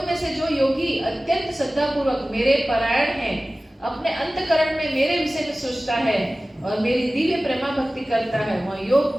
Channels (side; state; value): both; normal; correlation 0.97